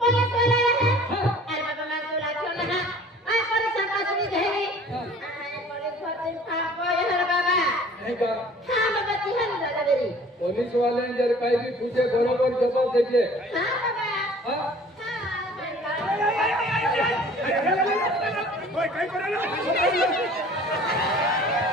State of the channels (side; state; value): both; normal; correlation 0.49